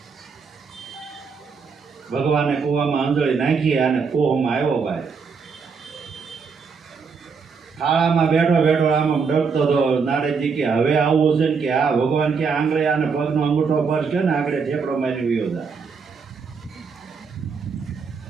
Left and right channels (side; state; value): left; quieter; 5.5 dB